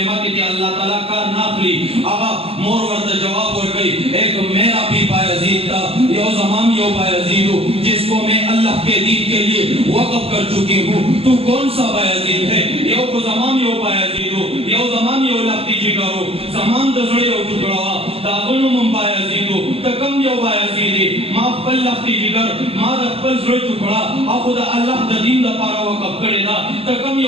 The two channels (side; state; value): left; late; 0.28 ms